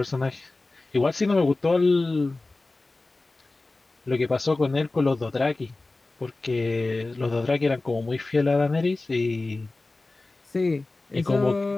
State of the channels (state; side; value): quieter; right; 3.2 dB